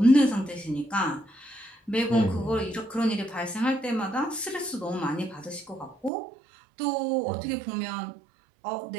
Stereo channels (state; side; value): drops out; left; at 6.1 s